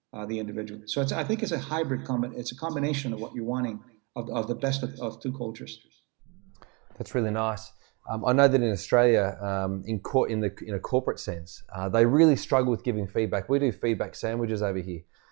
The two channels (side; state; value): left; quieter; 30.4 dB